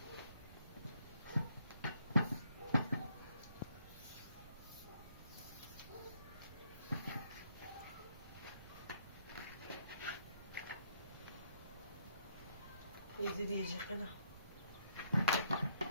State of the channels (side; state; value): both; inverted; correlation -0.70